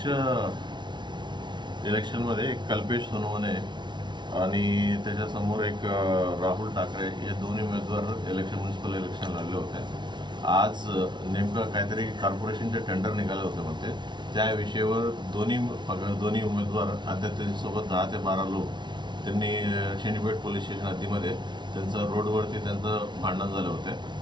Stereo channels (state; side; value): late; left; 0.22 ms